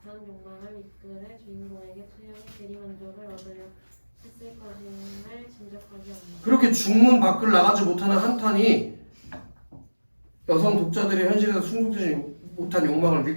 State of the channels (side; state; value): both; inverted; correlation -1.00